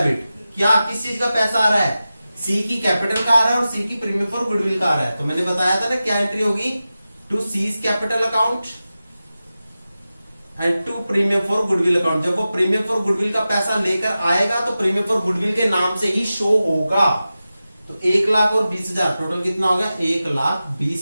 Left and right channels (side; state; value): both; inverted; correlation -0.94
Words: क्या किस चीज का पैसा आ रहा है, सी की कैपिटल का आ रहा है और सी की प्रीमियम फॉर गुडविल का आ रहा है। तो मैंने बताया था ना क्या एंट्री होगी, to C's capital account and to premium for goodwill account. जब वो प्रीमियम फॉर गुडविल का पैसा लेकर आएगा तो प्रीमियम फॉर गुडविल के नाम से ही शो होगा। तो 1 लाख और 20,000 टोटल कितना हो गया,